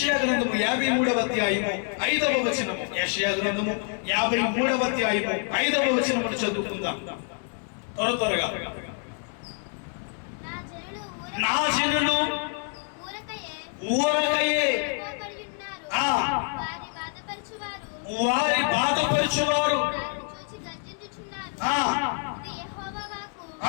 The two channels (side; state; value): right; quieter; 39.7 dB